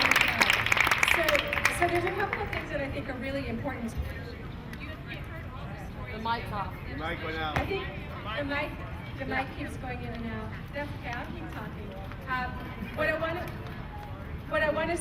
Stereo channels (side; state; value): both; identical; correlation 1.00